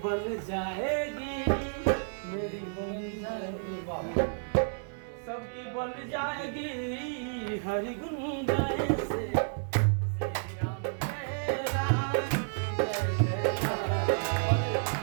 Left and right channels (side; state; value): left; silent; 57 dB below the other